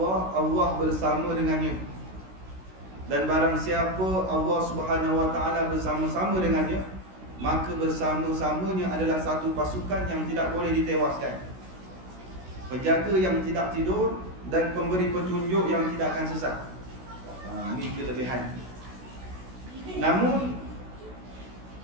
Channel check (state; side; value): late; left; 16 ms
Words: Allah bersama dengannya. Dan barang siapa Allah Subhanahu wa taala bersama-sama dengannya, maka bersama-samanya adalah satu pasukan yang tidak boleh ditewaskan, penjaga yang tidak tidur, dan pemberi petunjuk yang tidak akan sesat. Ini kelebihan.